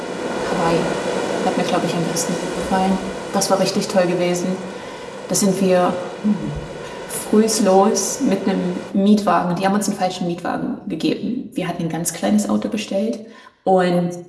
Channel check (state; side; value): identical; both; correlation 1.00